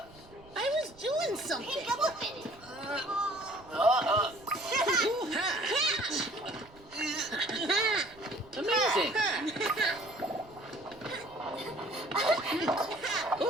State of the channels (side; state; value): right; noise; rumble, 24 dB below the sound